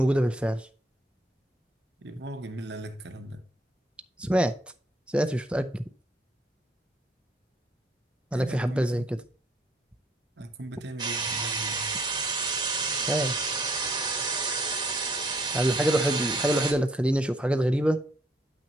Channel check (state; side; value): normal; both; correlation 0.66